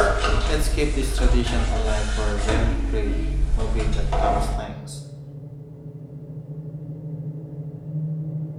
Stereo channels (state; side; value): identical; both; correlation 1.00